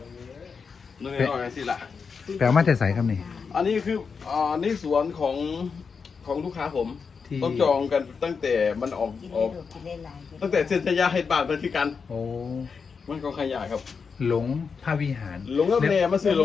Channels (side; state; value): right; quieter; 5.6 dB